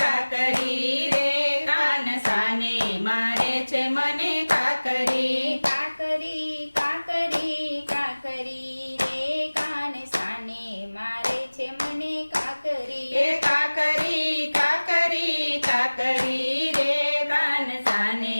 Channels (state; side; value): inverted; both; correlation -1.00